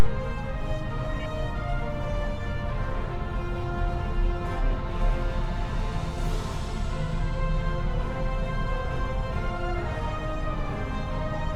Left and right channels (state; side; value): identical; both; correlation 1.00